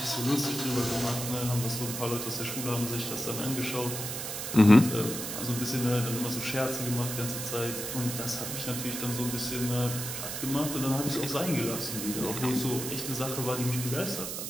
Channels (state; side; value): noise; right; hiss, 5 dB below the sound